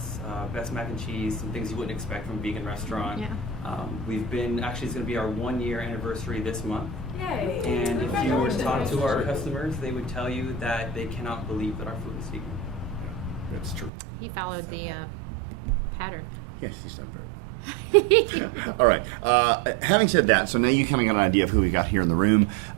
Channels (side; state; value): left; drops out; at 13.9 s